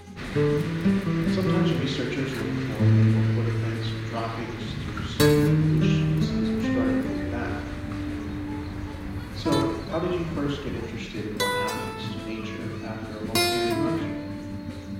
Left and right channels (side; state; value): both; identical; correlation 1.00